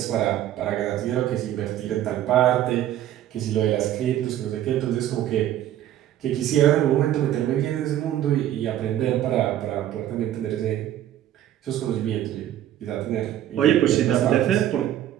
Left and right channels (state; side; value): quieter; left; 12.1 dB